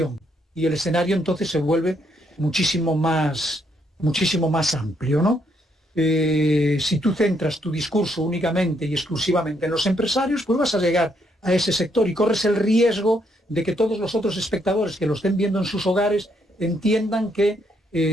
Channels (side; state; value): both; normal; correlation 0.74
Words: y el escenario entonces se vuelve muchísimo más amplio, ¿no? Si tú centras tu discurso únicamente y exclusivamente en los empresarios, pues vas a llegar a ese sector y corres el riesgo de que todos los otros espectadores que lo estén viendo en sus hogares entiendan que